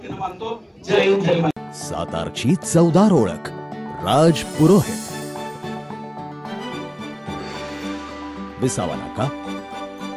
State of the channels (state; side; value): identical; both; correlation 1.00